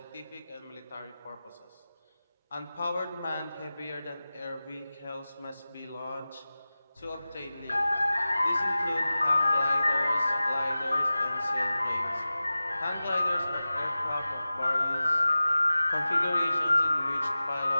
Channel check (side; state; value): both; inverted; correlation -0.96